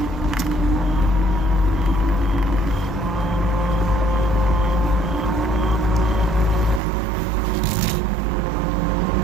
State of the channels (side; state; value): left; drops out; at 6.8 s